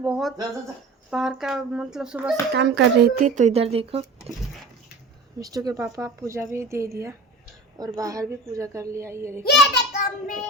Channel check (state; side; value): quieter; left; 3.1 dB